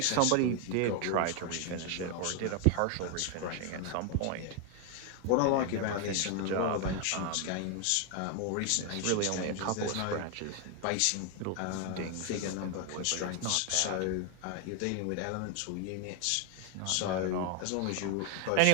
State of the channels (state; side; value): different; both; correlation 0.01